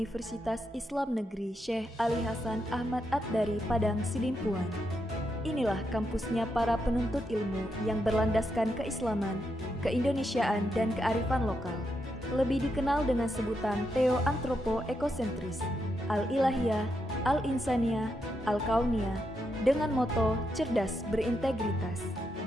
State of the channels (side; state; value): both; normal; correlation 0.82